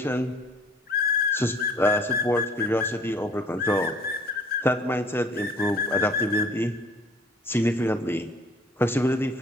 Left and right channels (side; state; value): both; normal; correlation 0.54